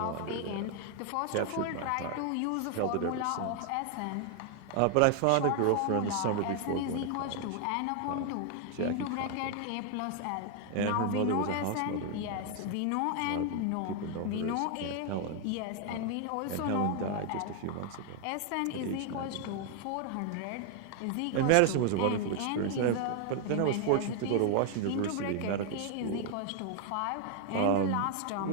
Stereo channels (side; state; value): both; different; correlation 0.00